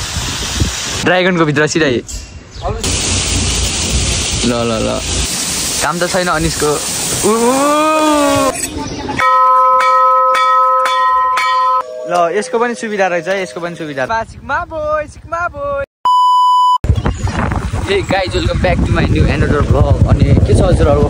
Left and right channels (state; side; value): identical; both; correlation 1.00